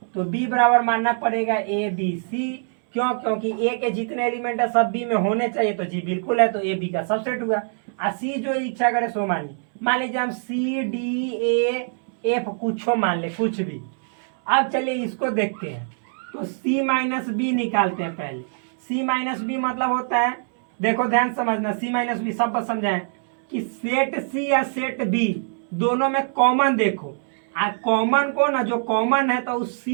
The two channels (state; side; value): silent; left; 63 dB below the other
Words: तो बी बराबर मानना पड़ेगा ए बी सी। क्यों, क्योंकि ए के जितने एलिमेंट है सब बी में होने चाहिए, तो जी बिल्कुल है, तो ए बी का सबसेट हुआ। सी जो इच्छा करे सो मानिए, मान लीजिए हम सी डी ए एफ कुछ मान ले, कुछ भी। अब चलिए इसको देखते हैं। तो सी माइनस बी निकालते हैं पहले। सी माइनस बी मतलब होता है, देखो ध्यान समझना, सी माइनस बी सब समझाएं कि सेट सी या सेट बी दोनों में कॉमन देखो, कॉमन को ना, जो कॉमन है तो उस